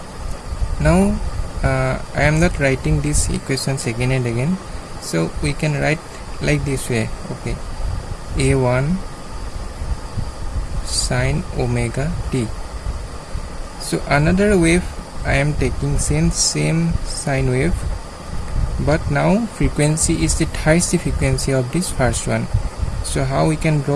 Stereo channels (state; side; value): identical; both; correlation 1.00